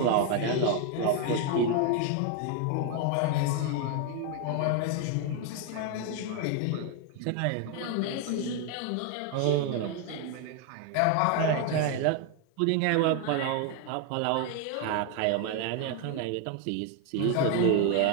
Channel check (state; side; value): different; both; correlation 0.01